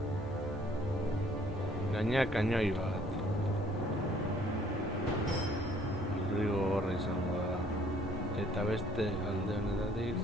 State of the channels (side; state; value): both; normal; correlation 0.61